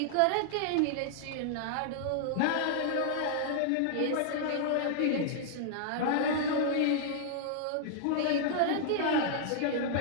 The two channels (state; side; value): different; both; correlation -0.01